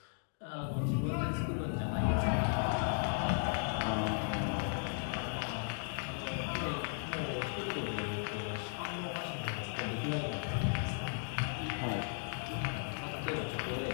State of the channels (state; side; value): silent; right; 54 dB below the other